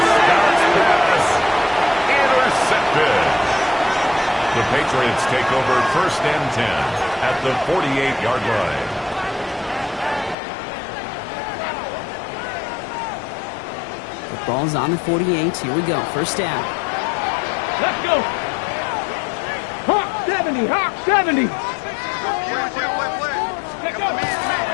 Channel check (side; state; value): right; drops out; at 10.4 s